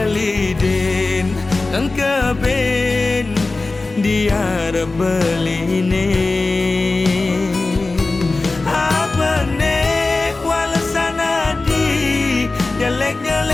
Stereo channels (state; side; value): quieter; right; 3.4 dB